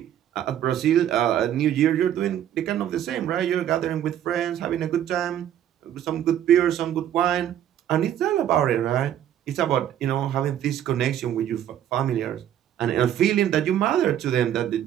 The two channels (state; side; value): quieter; left; 10.8 dB